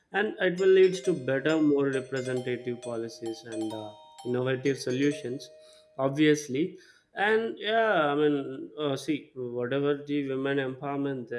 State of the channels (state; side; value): identical; both; correlation 1.00